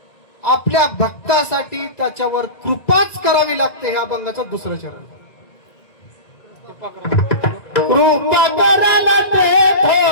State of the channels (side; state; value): right; late; 2.0 ms